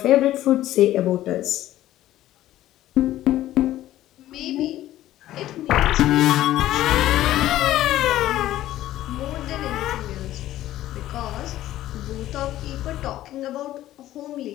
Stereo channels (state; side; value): quieter; right; 14.1 dB